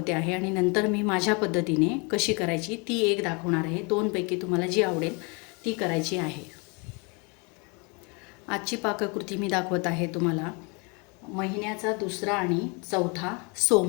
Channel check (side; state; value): right; quieter; 31.2 dB